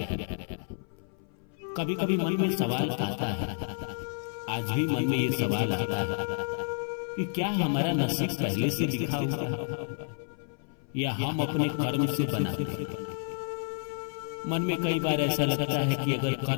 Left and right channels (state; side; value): silent; right; 56 dB below the other